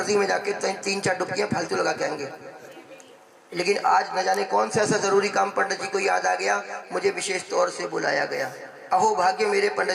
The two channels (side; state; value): both; identical; correlation 1.00